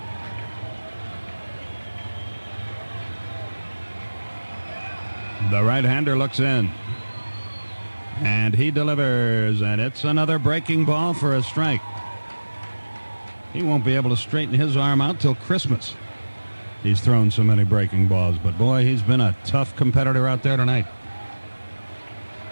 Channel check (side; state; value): both; inverted; correlation -1.00